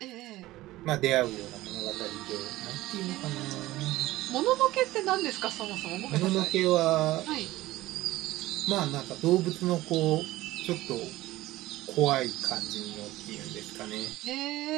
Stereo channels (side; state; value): left; quieter; 17.2 dB